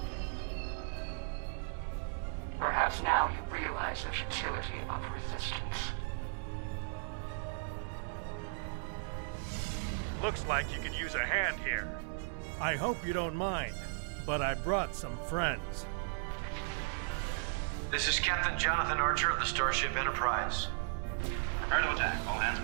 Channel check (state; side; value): silent; left; 54 dB below the other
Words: Perhaps now you realize the futility of resistance. Looks like you could use a hand here. I hope you don't mind, but I brought some friends. This is Captain Jonathan Archer of the Starship Enterprise. Prepare to attack. All hands